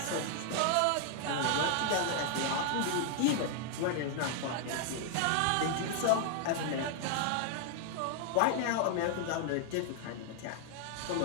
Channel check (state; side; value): different; both; correlation 0.00